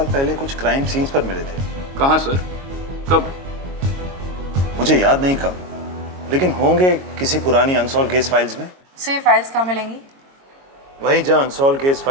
पहले कुछ क्राइम सीन्स पर मिले थे। कहाँ सर? कब? मुझे याद नहीं कब, लेकिन होंगे किसी पुरानी अनसॉल्व केस फाइल्स में। से ये फाइल्स कहाँ मिलेंगी? वहीं जहां अनसॉल्व केस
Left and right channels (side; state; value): left; late; 22 ms